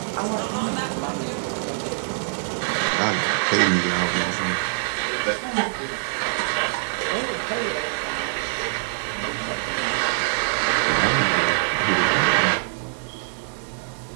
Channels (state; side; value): silent; left; digital silence